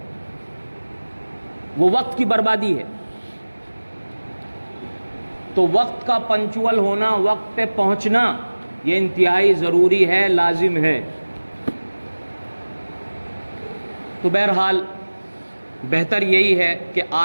وہ وقت کی بربادی ہے۔ تو وقت کا پنچول ہونا، وقت پہ پہنچنا، یہ انتہائی ضروری ہے، لازم ہے۔ تو بہرحال بہتر یہی ہے کہ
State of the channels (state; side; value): inverted; both; correlation -1.00